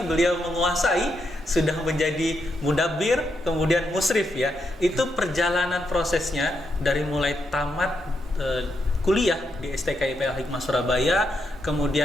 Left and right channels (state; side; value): normal; both; correlation 0.81